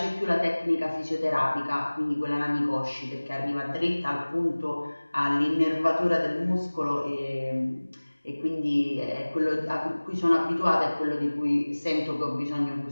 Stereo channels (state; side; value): inverted; both; correlation -1.00